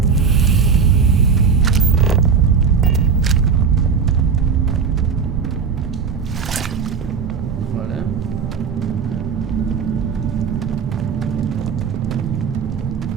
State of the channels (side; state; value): left; quieter; 5.9 dB